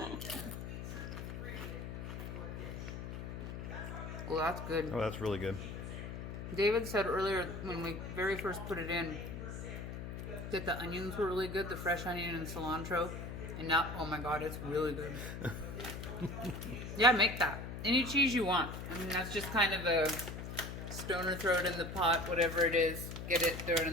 Well, that's good. Oh, that's really good. David said earlier when we very first put it in that the onions were really good, the fresh onion and cilantro. And now, oh my God, it's really good. Yeah, make that. Any cheese you want. I mean, that's just kind of a stoner, throw it in the pot, whatever it is. Get it, throw it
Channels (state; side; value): noise; left; hum, 7 dB below the sound